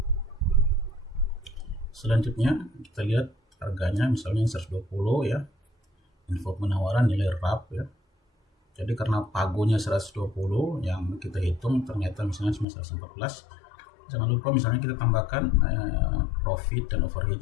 Selanjutnya kita lihat harganya, misalnya 120 ya, info penawaran nilai RAP ya. Jadi karena pagonya 120 yang kita hitung ternyata misalnya cuma 114, jangan lupa misalnya kita tambahkan profit dan overhead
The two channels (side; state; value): right; drops out; at 12.7 s